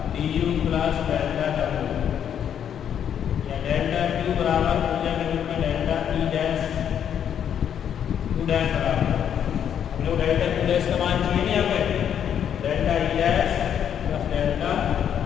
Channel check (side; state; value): right; quieter; 8.9 dB